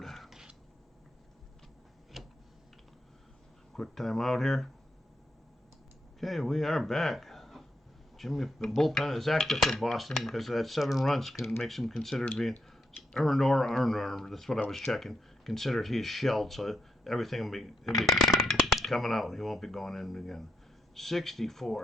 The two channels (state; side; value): normal; both; correlation 0.80